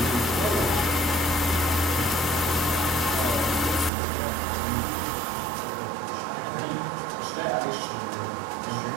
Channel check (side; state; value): left; drops out; at 3.9 s